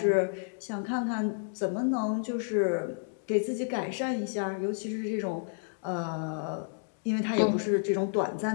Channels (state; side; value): silent; right; digital silence